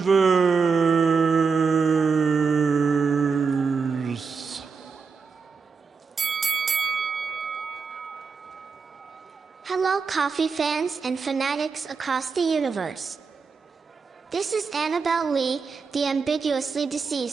Hello, coffee fans and fanatics across the universe. This is Annabelle Lee, the ambiguously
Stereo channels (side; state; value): left; quieter; 5.2 dB